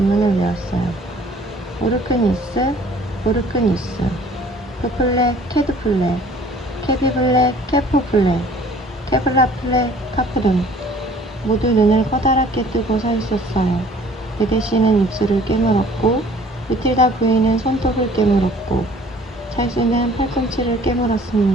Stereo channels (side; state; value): both; normal; correlation 0.53